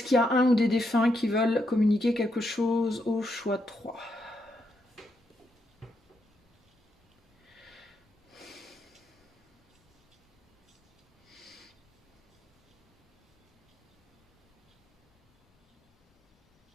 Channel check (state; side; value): normal; both; correlation 0.80